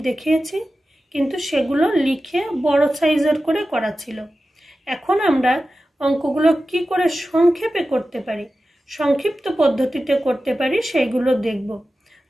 দেখিয়েছি, কিন্তু সেগুলো লিখে বড় সাইজের করে করা ছিল। এখন আমরা অঙ্কগুলো কি করে সংক্ষেপে করতে পারি, সংক্ষিপ্ত পদ্ধতিতে করতে পারি, সেইগুলো দেখব।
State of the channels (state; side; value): normal; both; correlation 0.94